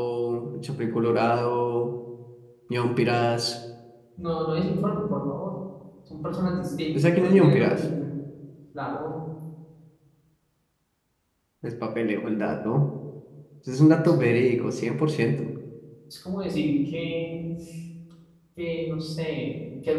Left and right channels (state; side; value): identical; both; correlation 1.00